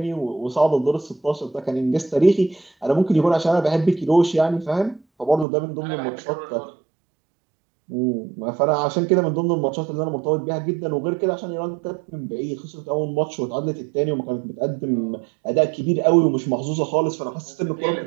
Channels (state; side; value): drops out; left; at 5.5 s